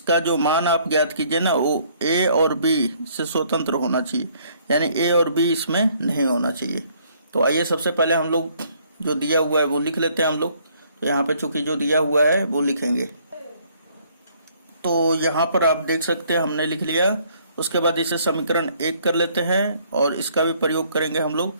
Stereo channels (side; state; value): both; inverted; correlation -0.64